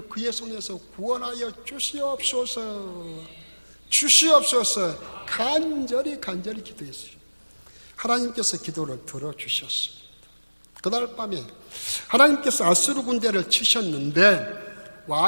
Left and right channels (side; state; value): both; inverted; correlation -1.00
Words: 그의 손에서 구원하여 주시옵소서. 주시옵소서. 간절히 기도했어요. 하나님께서 기도를 들어주셨습니다. 그날 밤에 하나님께서 아수르 군대를 치셨는데